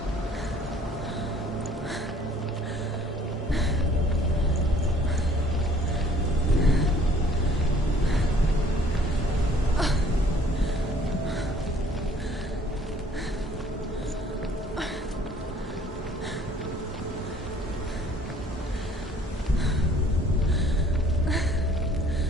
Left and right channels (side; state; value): both; normal; correlation 0.56